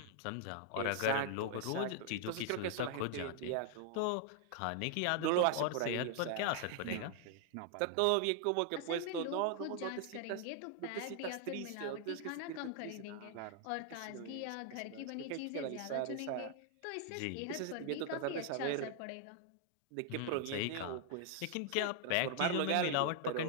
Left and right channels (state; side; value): different; both; correlation 0.00